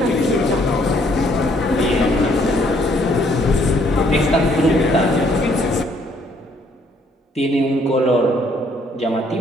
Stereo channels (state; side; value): normal; both; correlation 0.66